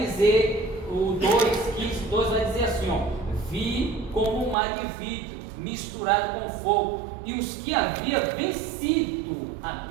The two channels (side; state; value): left; drops out; at 4.5 s